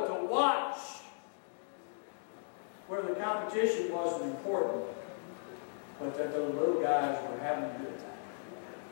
to watch where the competition wasn't important, but that the little guys were having a good time.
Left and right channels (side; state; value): right; silent; digital silence